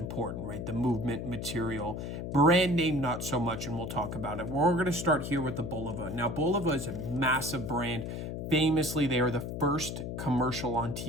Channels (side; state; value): left; noise; hum, 5 dB below the sound